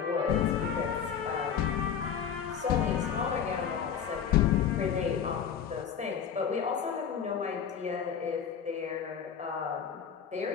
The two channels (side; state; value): right; quieter; 7.8 dB